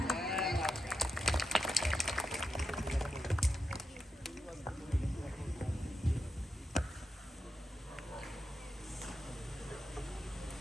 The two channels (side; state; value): both; normal; correlation 0.87